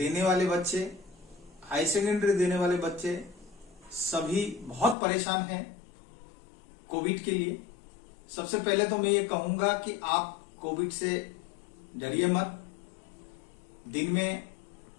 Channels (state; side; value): drops out; right; at 5.0 s